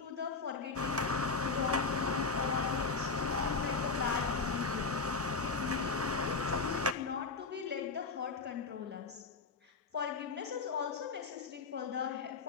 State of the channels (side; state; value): right; quieter; 4.4 dB